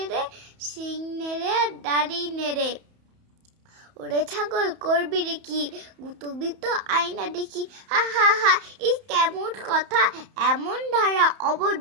সিং নেড়ে দাড়ি নেড়ে। ওরে ছাগল করবি রে কি, গুতবি তো আয়না দেখি, হা হা হা, এই কেমন কথা এমন ধারা,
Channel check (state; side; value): late; left; 31 ms